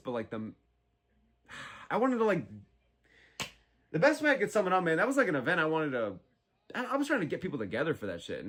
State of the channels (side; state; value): both; identical; correlation 1.00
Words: like I wanted to like The best way I could sum it up, man, that was like an event I wanted to... I was trying to get people together for that shit.